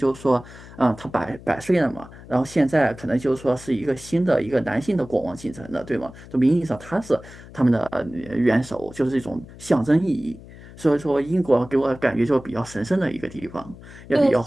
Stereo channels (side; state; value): left; noise; hum, 18 dB below the sound